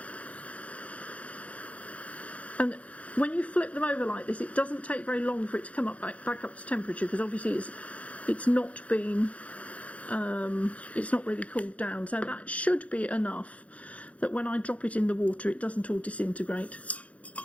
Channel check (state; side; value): late; right; 0.065 ms